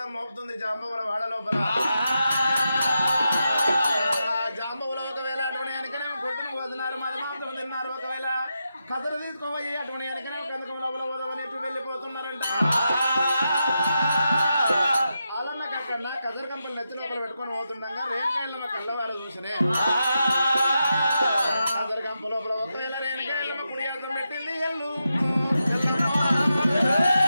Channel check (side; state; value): both; inverted; correlation -0.87